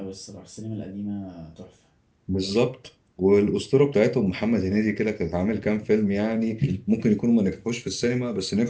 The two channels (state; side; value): identical; both; correlation 1.00